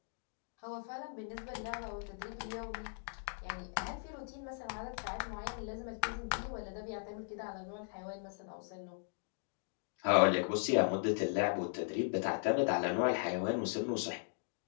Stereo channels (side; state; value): right; silent; digital silence